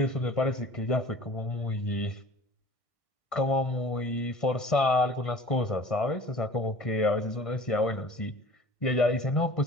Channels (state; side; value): late; right; 1.6 ms